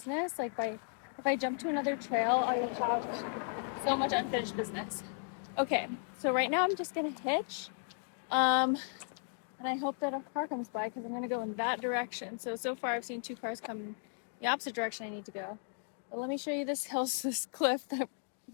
Like if I jump to another trail, I will have so much unfinished business. Okay, so right now I'm just gonna hitch. And I hope that a car comes by because I'm gonna go in that direction. So far I've seen 2 cars come the opposite direction I need to go. But let me show you this hill, this cliff that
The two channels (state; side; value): silent; right; 54 dB below the other